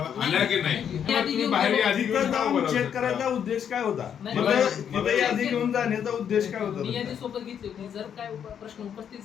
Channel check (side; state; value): right; quieter; 8.5 dB